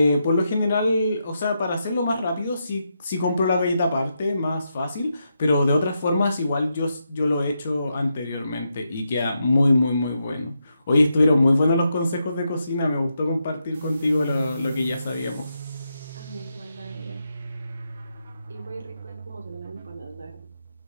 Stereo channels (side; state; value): both; inverted; correlation -0.84